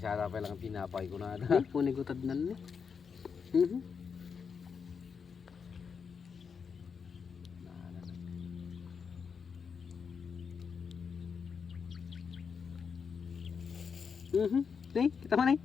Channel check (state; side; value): quieter; right; 6.1 dB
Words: sana pa lang pinapay ko na ata. Hindi, punigutad na ni. Nih, kita mana nih?